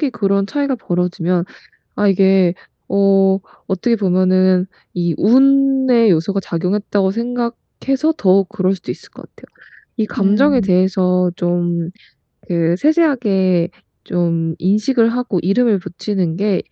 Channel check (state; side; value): identical; both; correlation 1.00